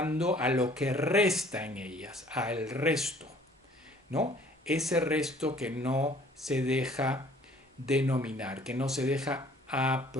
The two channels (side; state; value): both; normal; correlation 0.56